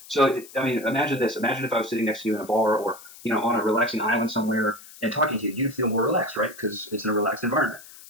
So, imagine this. Imagine if I was sitting next to you in a bar or, on a relaxing island somewhere and talking to you. You'd feel more relaxed, right? Because it's in a relaxed environment.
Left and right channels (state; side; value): noise; left; hiss, 19 dB below the sound